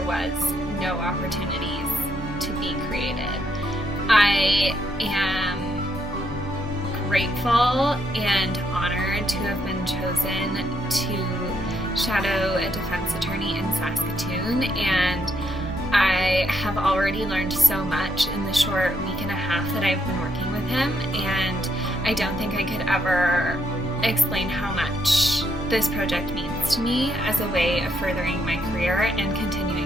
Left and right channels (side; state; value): both; normal; correlation 0.76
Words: was no opportunities to be created. I am grateful and honored to have been chosen to shadow a defense attorney in Saskatoon, and I have already learned so much in the short week and a half that I've been working with him, and I don't think I could ever explain how much this project means to me as a way of furthering my career and